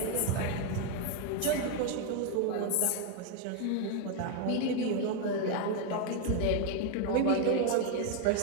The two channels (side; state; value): both; different; correlation 0.01